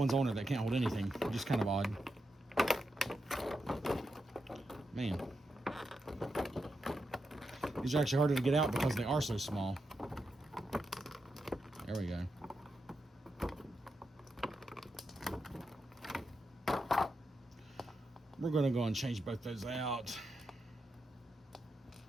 on her that can't hold anything, just kind of odd. Man. These are actually harder to get out because they are so small. There we go. We're going to go and change both those out.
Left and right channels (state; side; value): normal; both; correlation 0.86